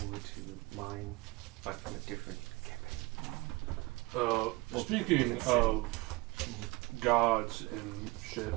to mine, but from a different campaign. Speaking of gods and shit,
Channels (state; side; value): quieter; left; 24.4 dB